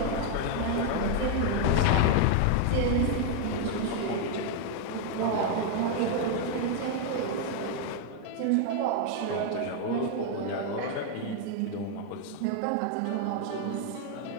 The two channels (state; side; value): different; both; correlation 0.00